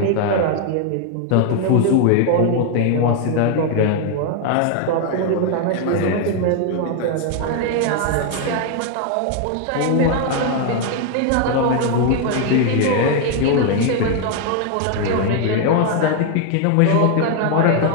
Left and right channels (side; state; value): both; different; correlation 0.00